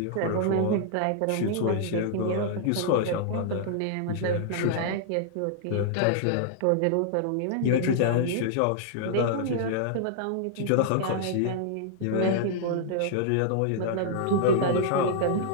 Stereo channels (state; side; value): different; both; correlation -0.01